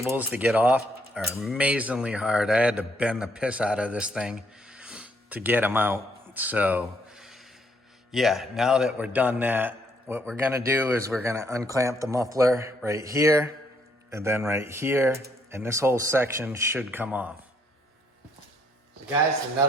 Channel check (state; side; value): normal; both; correlation 0.70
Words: to get off are amazingly hard. I had to bend the piss out of this thing to get them out. So yeah, now that we're done that, what we're gonna do is we're gonna unclamp the muffler right here and then right here, and this whole section should come off. So guys, the